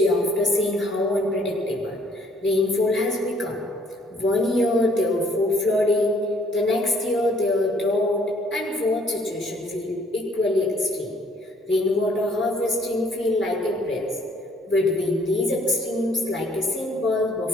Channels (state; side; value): normal; both; correlation 0.62